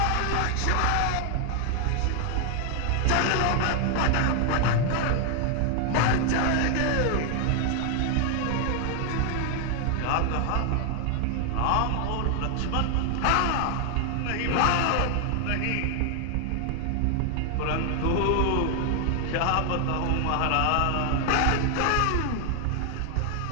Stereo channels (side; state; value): both; different; correlation 0.00